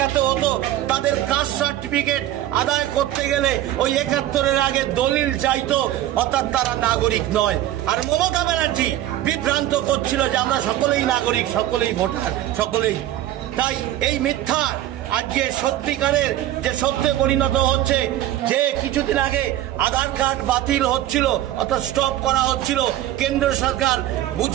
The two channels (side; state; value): left; quieter; 13.4 dB